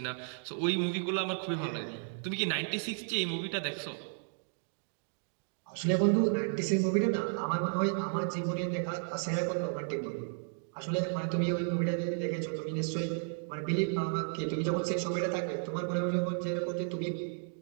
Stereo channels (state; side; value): silent; left; digital silence